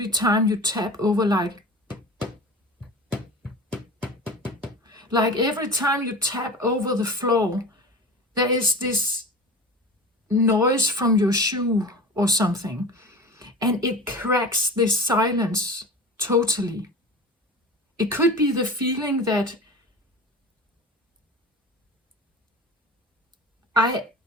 time you tap over, like every time you tap over the floor, there is this noise from your shoe or something, and it cracks this silence totally. It could be the feeling that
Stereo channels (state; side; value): normal; both; correlation 0.34